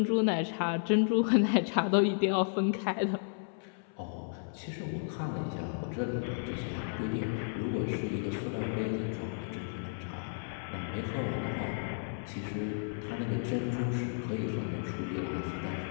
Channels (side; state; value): right; silent; 56 dB below the other